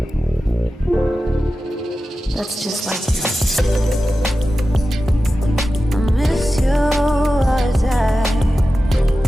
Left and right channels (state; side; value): normal; both; correlation 0.93